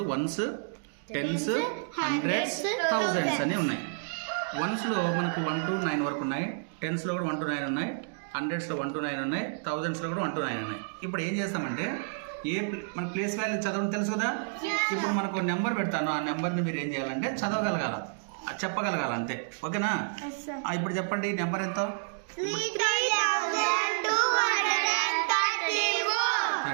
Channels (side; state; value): left; silent; digital silence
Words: వన్స్, టెన్స్, హండ్రెడ్స్, థౌజండ్స్ అని ఉన్నాయి. వన్స్లో మనకు 1 to 9 వరకు ఉన్నాయి, టెన్స్లో కూడా 1 to 9 ఉన్నాయి, హండ్రెడ్స్లో 1 to 9 ఉన్నాయి, థౌజండ్స్లో కూడా 1 to 9 ఉన్నాయి. ఇప్పుడు ఏం చేస్తామంటే మన ప్లేస్ వాల్యూ చదవడం తెలుసు కదా. ఇప్పుడు మనకు నెంబర్ పెడతాను, ఆ నెంబర్ని మీరు ఏం చేయాలంటే చదవగలగాల, చెప్పగలగాల, అంతే. ఓకేనా? ఇప్పుడు చెప్పండి నెంబర్ ఎంత?